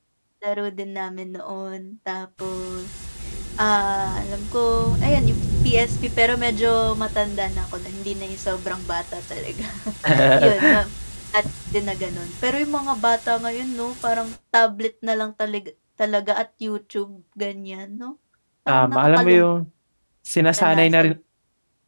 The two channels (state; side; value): inverted; both; correlation -1.00